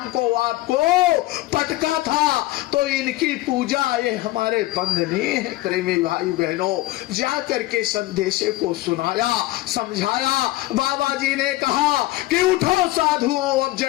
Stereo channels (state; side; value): quieter; right; 17.8 dB